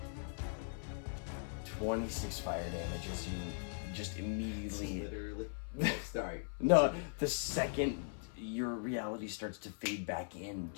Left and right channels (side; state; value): right; silent; 51 dB below the other